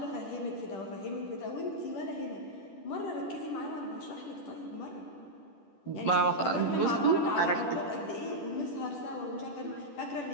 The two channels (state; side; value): late; right; 10 ms